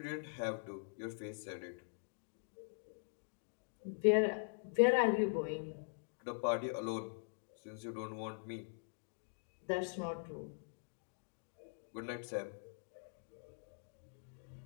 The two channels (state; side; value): silent; right; digital silence